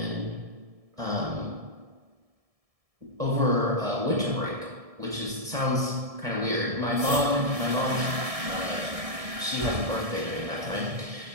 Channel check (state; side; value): late; left; 1.7 ms